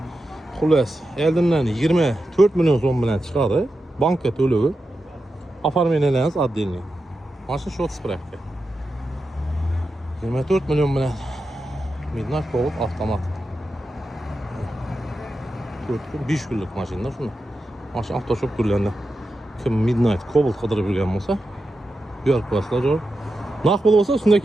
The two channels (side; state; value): both; normal; correlation 0.89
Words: Xullas, oldindan 24 million so'm bilan chiqadi. Bankka to'lovi. Оформлениyangiz отдельный. Mashina short spravka. 24 million bilan Midnight Cobalt avtomat. 5 kunlik mashina shuni. Mashina avtoshop turlarida kim Midnight Cobalt qidirib yurgan bo'lsa, bu yer qo'yasizlar joy. Narx bo'lsa shunda